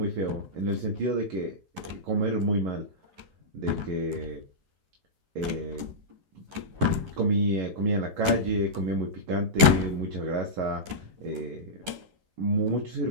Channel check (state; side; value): late; left; 11 ms